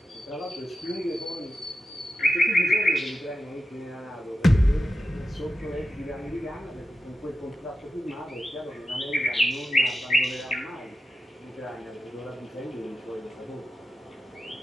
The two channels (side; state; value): both; normal; correlation 0.91